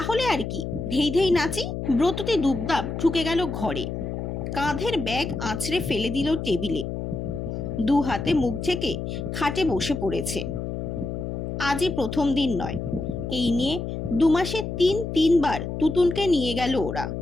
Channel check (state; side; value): noise; left; hum, 5 dB below the sound